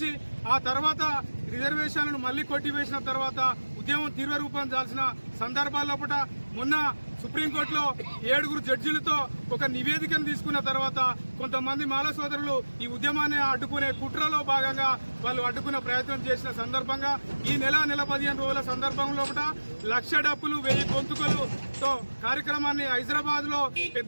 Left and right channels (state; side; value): inverted; both; correlation -1.00